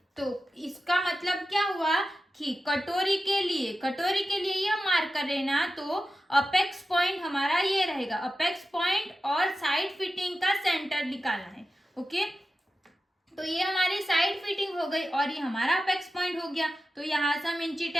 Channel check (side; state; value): both; normal; correlation 0.93